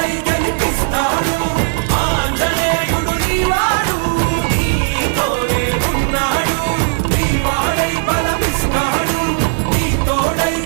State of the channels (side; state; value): left; silent; 69 dB below the other